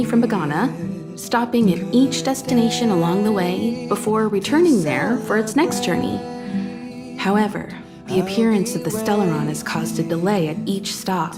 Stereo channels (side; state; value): both; identical; correlation 1.00